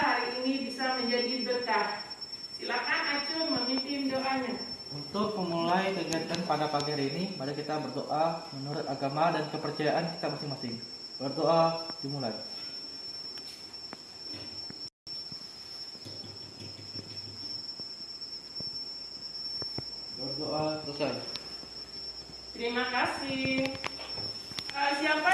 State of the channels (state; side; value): identical; both; correlation 1.00